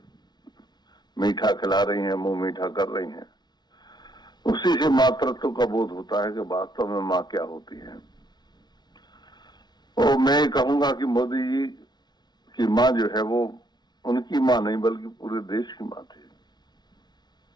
मीठा खिला रही हैं, मुंह मीठा कर रही हैं, उसी से मातृत्व का बोध होता है कि वास्तव में माँ क्या होती है। और मैं कहूंगा कि मोदी जी की माँ जो है वो उनकी माँ नहीं बल्कि पूरे देश की माँ थी।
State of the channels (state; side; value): late; right; 0.20 ms